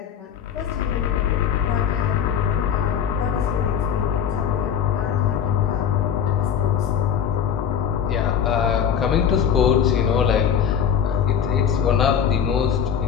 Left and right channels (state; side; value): quieter; right; 8.2 dB